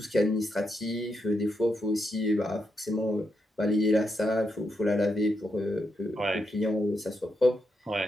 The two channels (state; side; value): normal; both; correlation 0.82